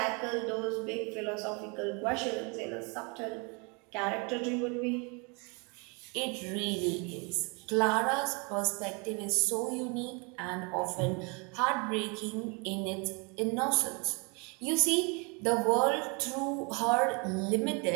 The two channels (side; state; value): left; quieter; 31.9 dB